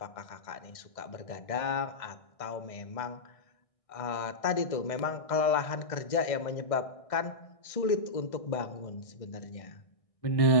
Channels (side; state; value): right; late; 1.6 ms